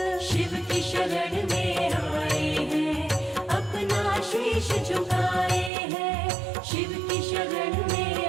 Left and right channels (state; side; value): drops out; left; at 5.7 s